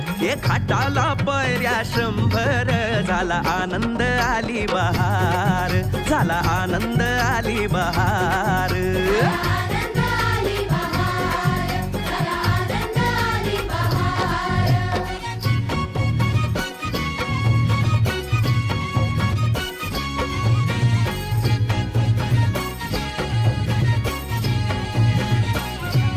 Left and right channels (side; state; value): both; identical; correlation 1.00